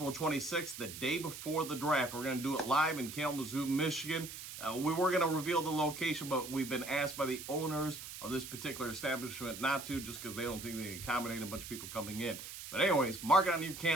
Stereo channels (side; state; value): right; noise; hiss, 10 dB below the sound